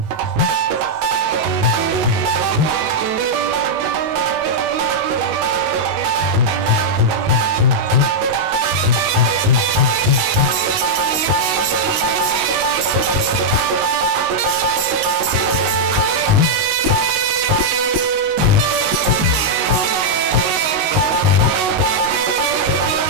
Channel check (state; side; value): late; left; 19 ms